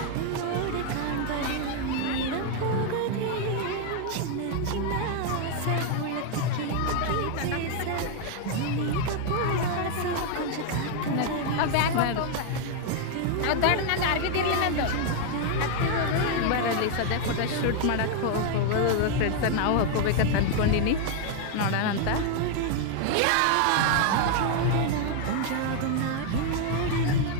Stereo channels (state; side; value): different; both; correlation 0.00